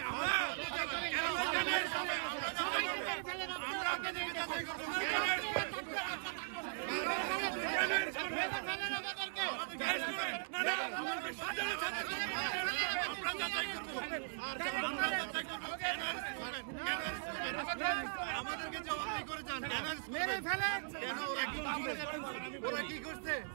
আমাদেরকে জবাবদিহি করে যান। ওরা কি করছে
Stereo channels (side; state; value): left; silent; digital silence